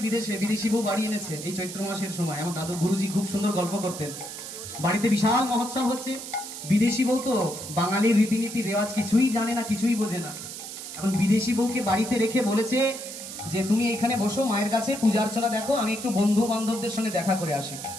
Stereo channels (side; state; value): right; noise; hiss, 10 dB below the sound